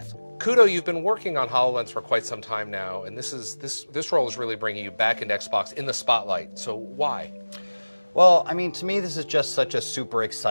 Kudo, you've been working on HoloLens for quite some time now, and this role is really bringing you back into Xbox in the spotlight. So why? Well, to me, this is just such a super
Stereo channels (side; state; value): both; inverted; correlation -1.00